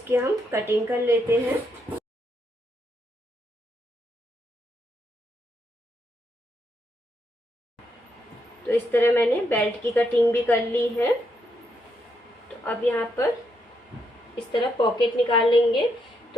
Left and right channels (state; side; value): normal; both; correlation 0.78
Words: हम कटिंग कर लेते हैं। तो इस तरह मैंने बेल्ट की कटिंग भी कर ली है। तो अब यहाँ पर इस तरह पॉकेट निकाल लेंगे।